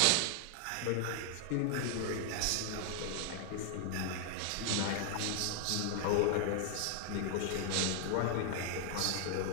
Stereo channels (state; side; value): different; both; correlation 0.00